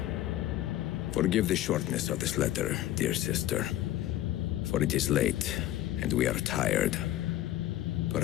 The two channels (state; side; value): quieter; right; 14.0 dB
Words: Forgive the shortness of this letter, dear sister, for it is late, and we are tired.